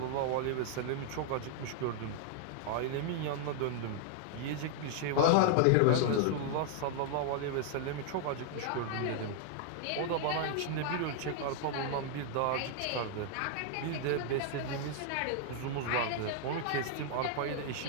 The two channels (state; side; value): different; both; correlation -0.01